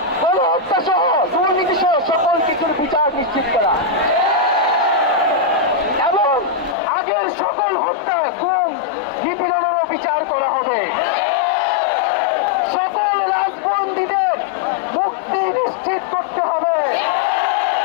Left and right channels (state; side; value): drops out; right; at 6.8 s